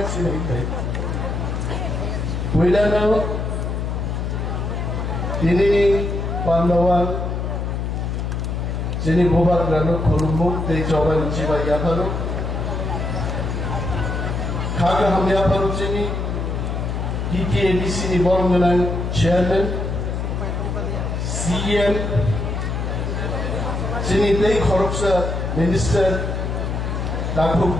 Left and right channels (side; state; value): left; noise; hum, 2 dB below the sound